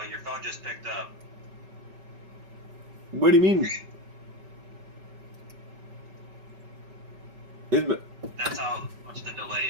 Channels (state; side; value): late; left; 5.2 ms